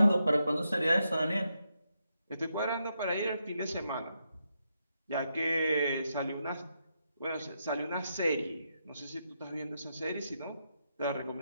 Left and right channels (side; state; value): both; inverted; correlation -0.82